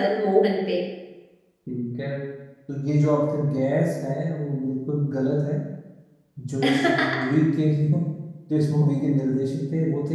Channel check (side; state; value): both; identical; correlation 1.00